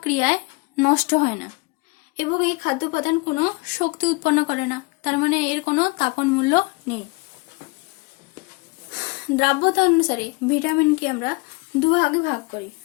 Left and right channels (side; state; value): right; quieter; 26.3 dB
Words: ক্রিয়ায় নষ্ট হয় না এবং এই খাদ্য উপাদান কোনো শক্তি উৎপন্ন করে না, তার মানে এর কোনো তাপন মূল্য নেই। দ্রাব্যতা অনুসারে ভিটামিনকে আমরা দুভাগে ভাগ করি।